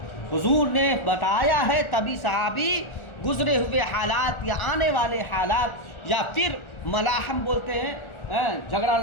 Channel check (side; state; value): right; late; 1.4 ms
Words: حضور نے بتایا ہے، تبھی صحابی گزرے ہوئے حالات یا آنے والے حالات یا پھر ملاحم بولتے ہیں جھگڑا